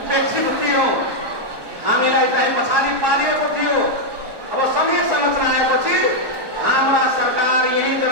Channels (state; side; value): late; left; 1.2 ms